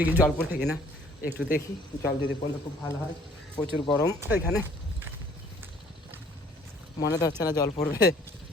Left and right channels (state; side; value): normal; both; correlation 0.58